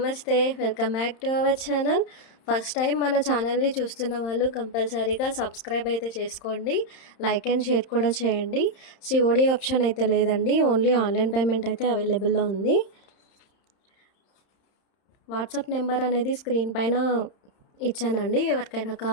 Welcome back to our channel. First time మన ఛానల్ని చూస్తున్న వాళ్ళు కంపల్సరీగా సబ్స్క్రైబ్ అయితే చేసుకోండి. లైక్ అండ్ షేర్ కూడా చేయండి. సిఓడి ఆప్షన్ అయితే లేదండి. ఓన్లీ ఆన్లైన్ పేమెంట్ అయితే అవైలబుల్లో ఉంది. వాట్సాప్ నెంబర్ అనేది స్క్రీన్ పైన ఇచ్చానండి. ఎవరికైనా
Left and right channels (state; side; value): late; right; 31 ms